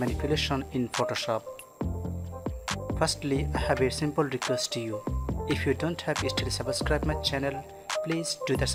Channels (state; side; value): identical; both; correlation 1.00